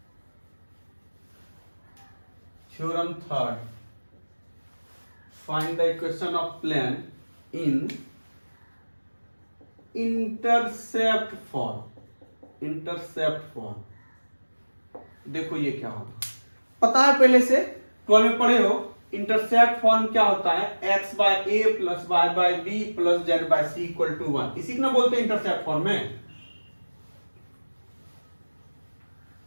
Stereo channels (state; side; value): inverted; both; correlation -1.00